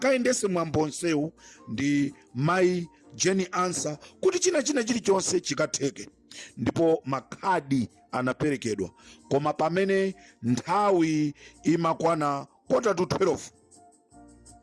mwambonsewu ndi mayi Jeni Ansah kuti china chilichonse chikatheke. Ndipo makhadi anaperekedwa, koma pamene nthawi imakwana 11:45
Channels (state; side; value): identical; both; correlation 1.00